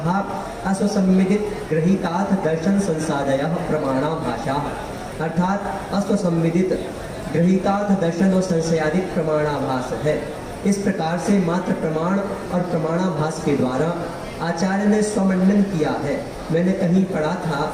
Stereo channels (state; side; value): identical; both; correlation 1.00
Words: अस्वसंविदित गृहीतार्थ दर्शन संसादयः प्रमाणाभाषा, अर्थात अस्वसंविदित गृहीतार्थ दर्शन और संशयादित प्रमाणाभास है। इस प्रकार से मात्र प्रमाण और प्रमाणाभास के द्वारा आचार्य ने स्वमंडन किया है। मैंने कहीं पढ़ा था